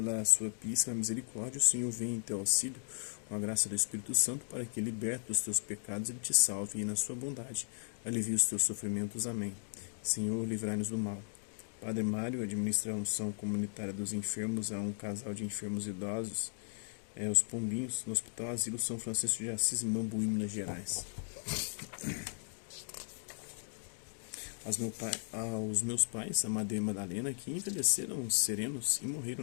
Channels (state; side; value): silent; right; digital silence